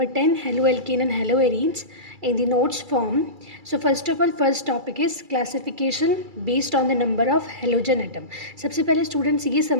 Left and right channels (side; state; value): left; late; 2.3 ms